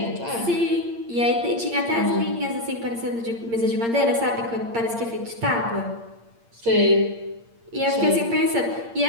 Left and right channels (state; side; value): late; left; 8.7 ms